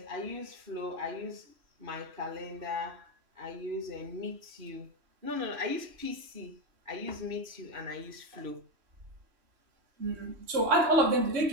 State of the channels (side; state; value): left; late; 3.1 ms